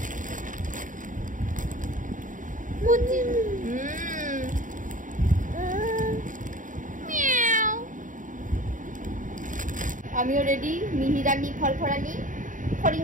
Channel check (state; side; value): late; left; 0.38 ms